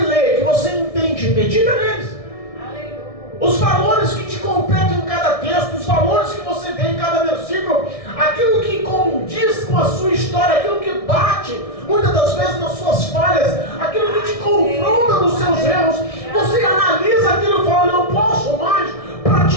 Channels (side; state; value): right; late; 1.6 ms